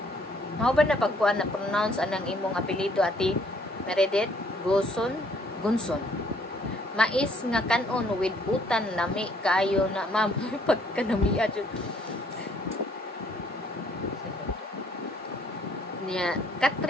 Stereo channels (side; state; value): both; normal; correlation 0.64